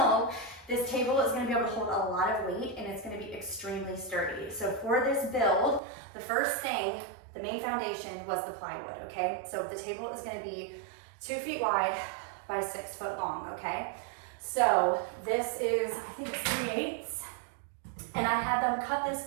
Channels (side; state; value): left; drops out; at 5.8 s